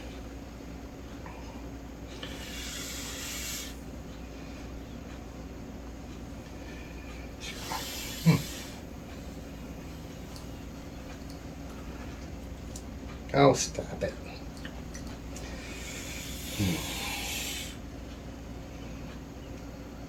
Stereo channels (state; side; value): identical; both; correlation 1.00